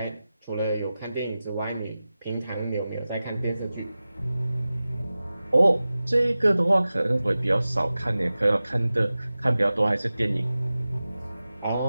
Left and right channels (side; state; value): both; inverted; correlation -0.96